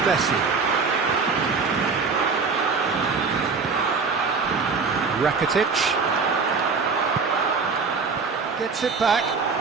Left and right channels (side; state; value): left; quieter; 4.9 dB